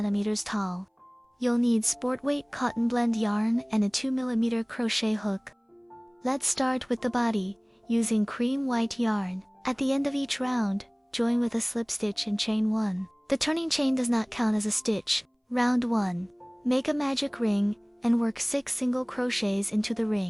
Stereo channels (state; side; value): identical; both; correlation 1.00